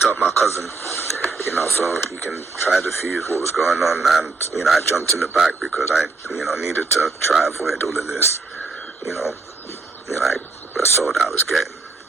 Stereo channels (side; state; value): left; quieter; 3.9 dB